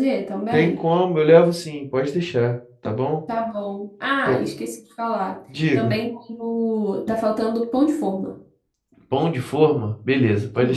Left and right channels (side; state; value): both; identical; correlation 1.00